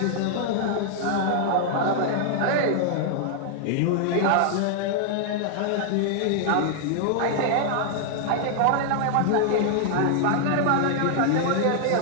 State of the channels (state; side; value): different; both; correlation -0.01